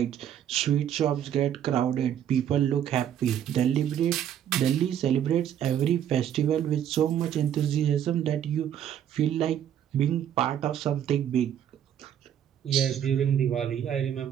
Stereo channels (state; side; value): quieter; left; 9.9 dB